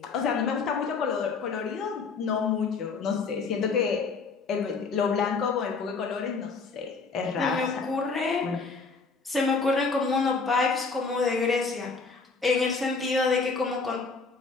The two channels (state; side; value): quieter; right; 4.6 dB